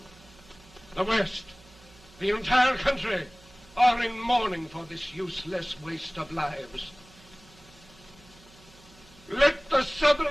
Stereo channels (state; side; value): noise; right; hum, 25 dB below the sound